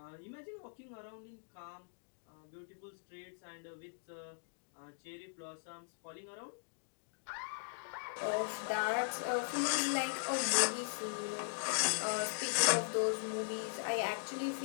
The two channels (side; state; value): right; silent; digital silence